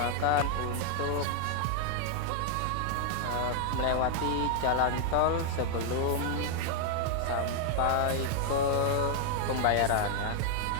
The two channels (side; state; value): both; different; correlation 0.00